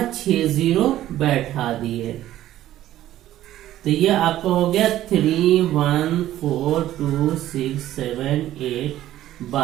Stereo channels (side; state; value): left; quieter; 13.5 dB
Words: 6 0 बैठा दिए। तो ये आपका हो गया 3.14267